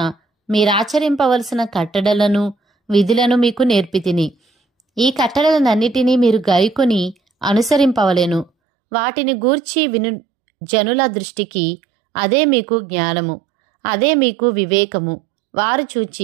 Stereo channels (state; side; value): drops out; left; at 8.5 s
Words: మీరాచరింపవలసిన కట్టడలను విధులను మీకు నేర్పితిని. ఈ కట్టడలనన్నిటినీ మీరు గైకొని అనుసరింపవలెను. వాటిని గూర్చి విను జనుల దృష్టికి అదే మీకు జ్ఞానము, అదే మీకు వివేకము. వారు